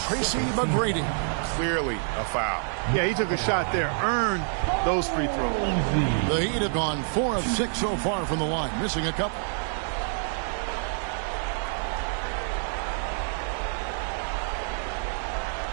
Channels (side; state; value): left; silent; 60 dB below the other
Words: McGrady. Clearly a foul. Yeah, he took a shot there. Earned those free throws. The Heat have gone 4 of 6 so far from the line. Missing a couple.